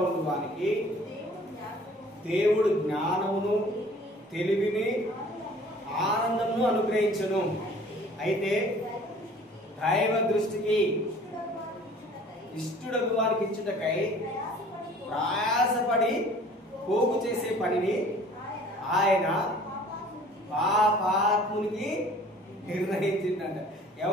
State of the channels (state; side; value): normal; both; correlation 0.50